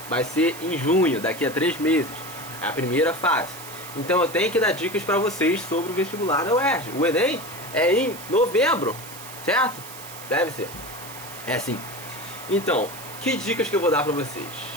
Vai ser em junho, daqui a 3 meses. É a primeira fase. Então eu tenho que dar dicas pra vocês sobre o vestibular da UERJ. O Enem é em novembro, certo? Deve ser. É sim. Então, que dicas que eu vou dar pra vocês?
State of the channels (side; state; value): right; noise; hiss, 14 dB below the sound